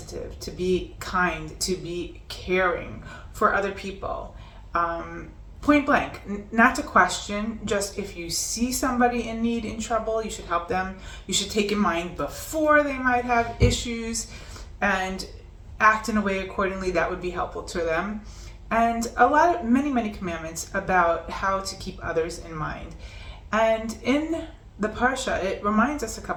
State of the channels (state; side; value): identical; both; correlation 1.00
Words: to be kind, to be caring for other people. Point blank, not to question, just if you see somebody in need, in trouble, you should help them. You should take in mind before they might have issues and act in a way accordingly that would be helpful to them. And many commandments about how to keep others in mind. And in the Parsha, it reminds us a